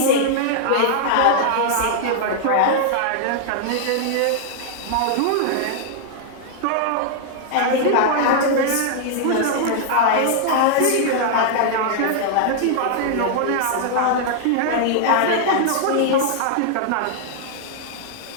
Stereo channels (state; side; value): different; both; correlation -0.01